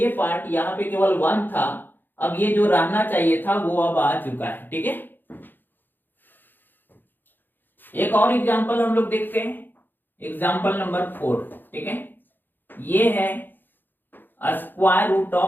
पार्ट यहाँ पे केवल 1 था, अब ये जो रहना चाहिए था वो अब आ चुका है। ठीक है, एक और एग्जांपल हम लोग देखते हैं, एग्जांपल नंबर 4। ठीक है, ये है square root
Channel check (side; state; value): right; late; 0.092 ms